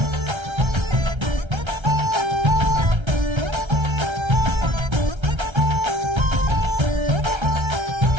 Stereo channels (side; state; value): left; late; 1.3 ms